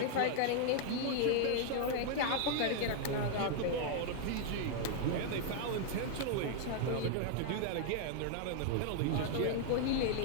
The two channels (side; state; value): both; different; correlation 0.00